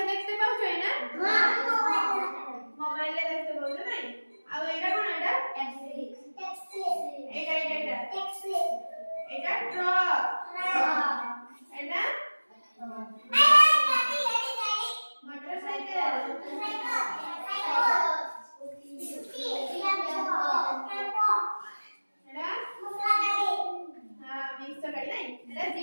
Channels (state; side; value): inverted; both; correlation -1.00